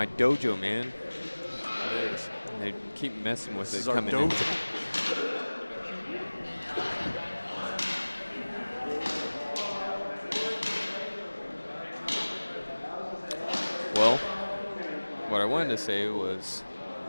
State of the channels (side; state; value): both; inverted; correlation -1.00